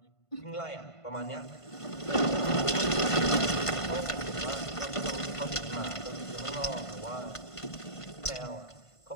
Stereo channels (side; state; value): right; late; 1.5 ms